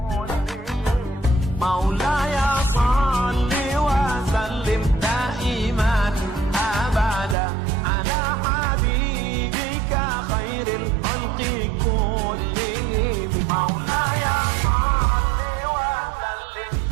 Maulaya salli wa sallim daiman abada ala habibika khairil khalqi kullihim. Maulaya salli wa sallim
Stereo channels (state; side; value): drops out; left; at 7.4 s